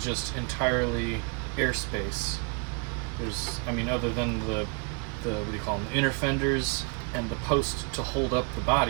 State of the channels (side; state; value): left; quieter; 34.4 dB